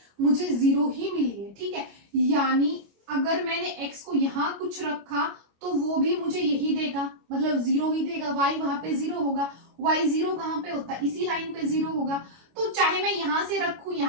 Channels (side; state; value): left; late; 25 ms